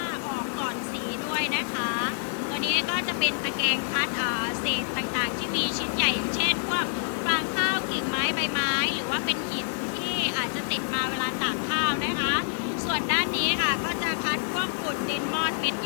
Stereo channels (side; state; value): right; silent; digital silence